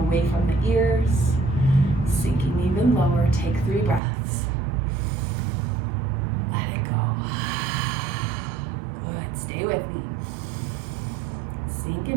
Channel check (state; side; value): drops out; left; at 4.0 s